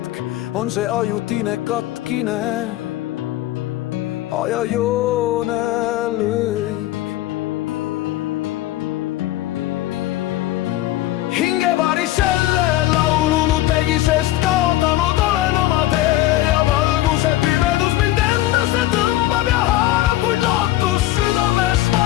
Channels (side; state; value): right; quieter; 15.5 dB